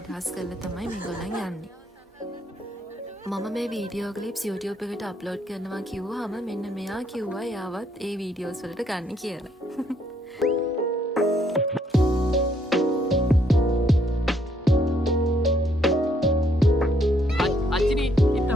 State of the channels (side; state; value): both; normal; correlation 0.70